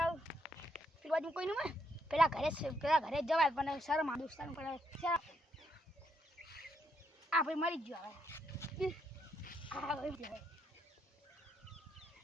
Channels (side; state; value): both; normal; correlation 0.77